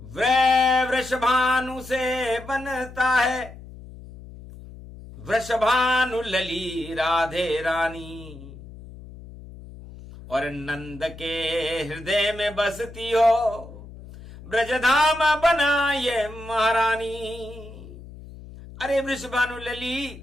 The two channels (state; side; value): noise; left; hum, 16 dB below the sound